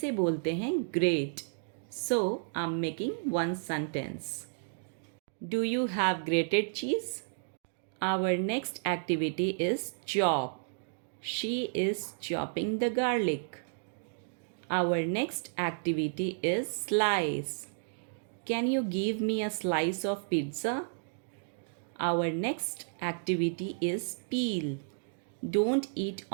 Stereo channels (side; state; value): left; silent; digital silence